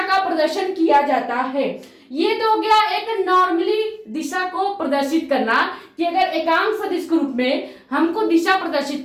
का प्रदर्शन किया जाता है। ये तो हो गया एक नॉर्मली दिशा को प्रदर्शित करना, कि अगर एकांक सदिश के रूप में हमको दिशा प्रदर्शित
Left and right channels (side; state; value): both; identical; correlation 1.00